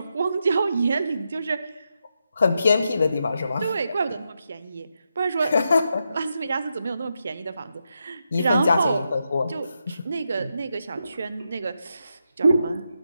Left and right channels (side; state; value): both; inverted; correlation -0.85